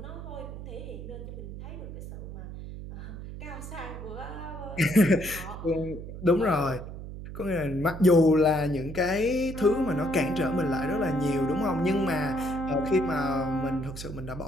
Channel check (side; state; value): right; noise; hum, 10 dB below the sound